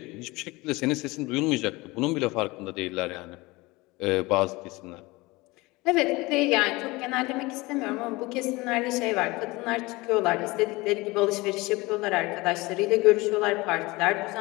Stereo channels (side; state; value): right; quieter; 22.5 dB